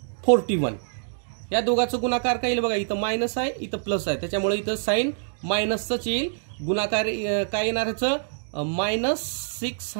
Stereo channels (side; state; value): left; silent; digital silence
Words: 41. या दोघांचं गुणाकार काय येईल बघा, इथं मायनस आहे, इथं प्लस आहे, त्याच्यामुळे इथं साइन मायनसच येईल. गुणाकार काय येणार ह्याचं